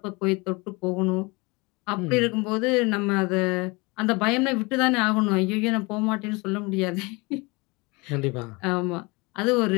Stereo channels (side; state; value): right; quieter; 26.3 dB